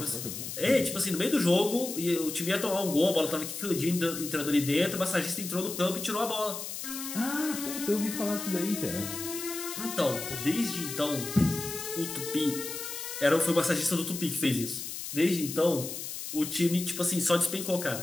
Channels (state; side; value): noise; left; hiss, 7 dB below the sound